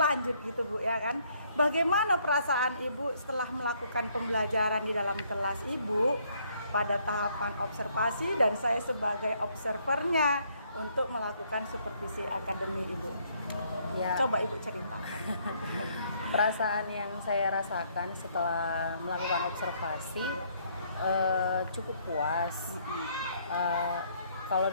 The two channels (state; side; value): inverted; both; correlation -0.68